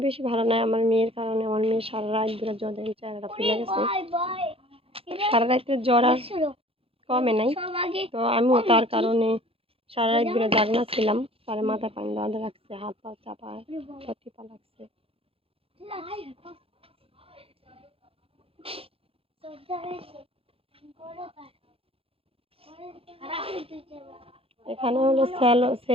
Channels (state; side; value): late; left; 0.27 ms